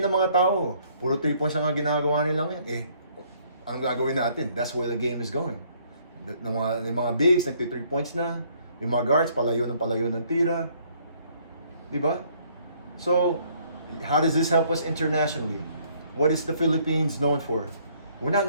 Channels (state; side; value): inverted; both; correlation -0.64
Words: ng mga tao, puro 3 points ang ginagawa nila ngayon. Ang gagawin natin, that's where the game is going. Yung mga bigs, nagpi 3 points na. Yung mga guards, palayo ng tira. Diba? So, how does this help us internationally? What is the Philippines known for? We're not